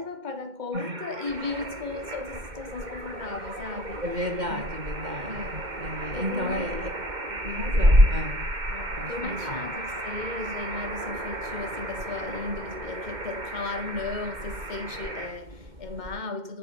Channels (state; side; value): late; left; 2.1 ms